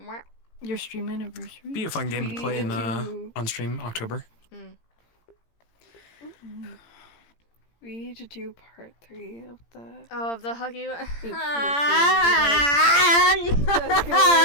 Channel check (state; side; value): late; right; 17 ms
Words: Your stream anniversary? Be a fun game to play on stream October. Mm. We need to do part 3 of the. Oh, of the huggy. That's gonna be